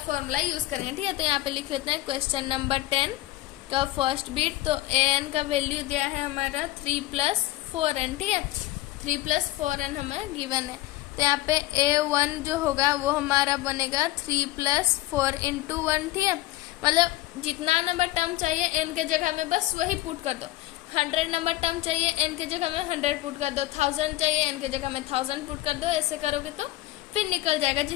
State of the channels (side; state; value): right; quieter; 17.4 dB